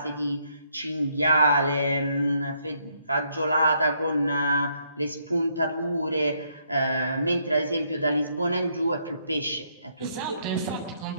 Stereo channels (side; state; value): both; inverted; correlation -0.73